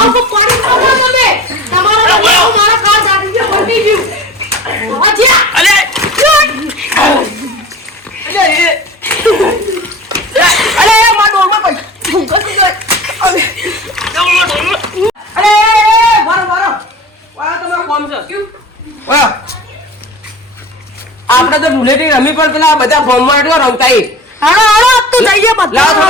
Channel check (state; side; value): normal; both; correlation 0.37